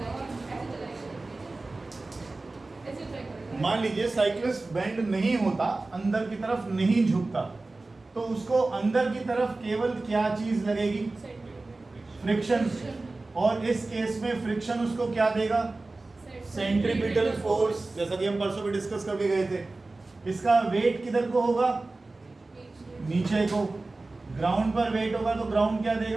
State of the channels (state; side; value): quieter; left; 3.2 dB